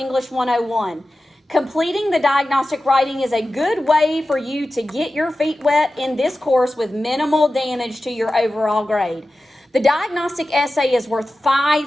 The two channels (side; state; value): both; normal; correlation 0.94